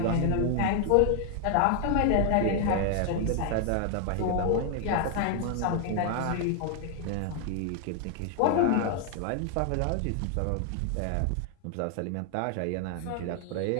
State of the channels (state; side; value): different; both; correlation 0.00